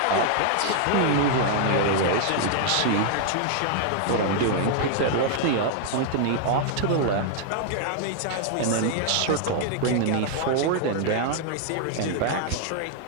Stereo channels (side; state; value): both; different; correlation 0.00